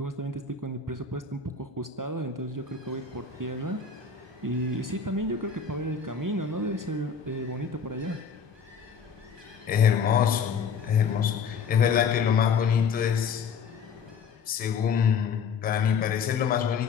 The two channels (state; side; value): quieter; right; 6.1 dB